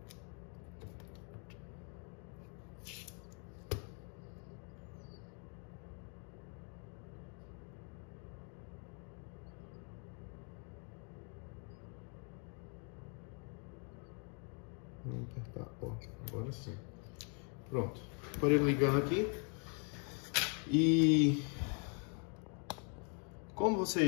Vamos apertar, ó, agora sim. Pronto, aparelho ligando aqui. E como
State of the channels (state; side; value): quieter; right; 39.8 dB